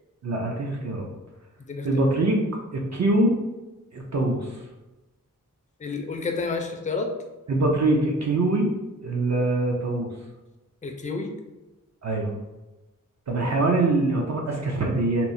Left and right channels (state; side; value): normal; both; correlation 0.44